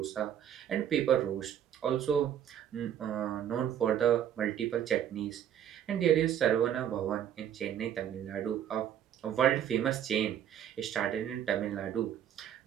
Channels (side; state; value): left; quieter; 10.0 dB